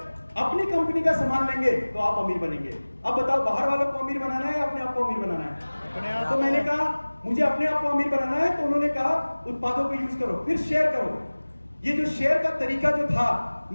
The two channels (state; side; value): inverted; both; correlation -1.00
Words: अपनी कंपनी का सामान लेंगे तो आप अमीर बनेंगे। अब बताओ, बाहर वालों को अमीर बनाना है या अपने आप को अमीर बनाना है? तो मैंने कहा मुझे अपने आप को अमीर बनाना है, तो उन्होंने कहा उत्पादों को यूज करो, फिर शेयर करो। ये जो शेयर का तरीका जो था,